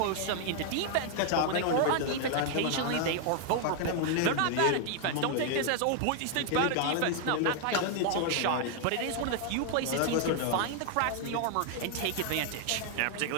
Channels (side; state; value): both; different; correlation 0.00